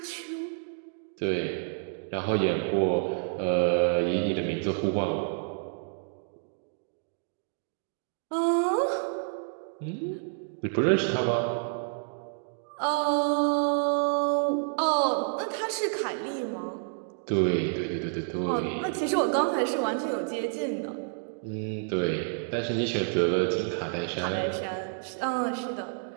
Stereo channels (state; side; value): silent; left; digital silence